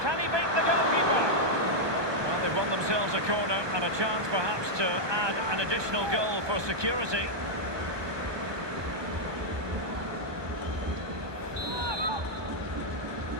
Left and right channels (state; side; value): late; left; 1.2 ms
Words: Can he beat the goalkeeper? Well, they've won themselves a corner and a chance perhaps to add an additional goal for security.